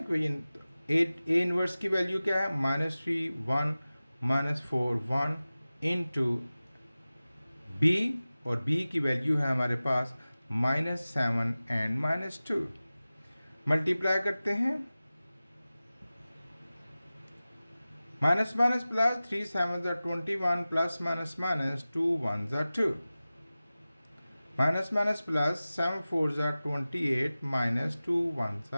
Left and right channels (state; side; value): inverted; both; correlation -0.97